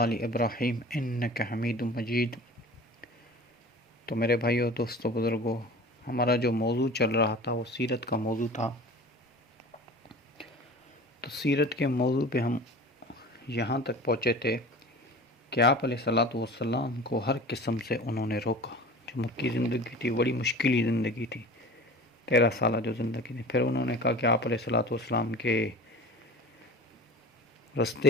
ابراہیم انک حمید مجید۔ تو میرے بھائیو، دوستو، بزرگوں، ہمارا جو موضوع چل رہا تھا وہ سیرت کا موضوع تھا۔ تو سیرت کے موضوع پہ ہم یہاں تک پہنچے تھے کہ آپ علیہ الصلاۃ والسلام کو ہر قسم سے انہوں نے روکا۔ جو مکی زندگی تھی بڑی مشکلی زندگی تھی، 13 سالہ جو زندگی تھی۔ پھر انہوں نے کہا کہ آپ علیہ الصلاۃ والسلام کے رستے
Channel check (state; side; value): normal; both; correlation 0.39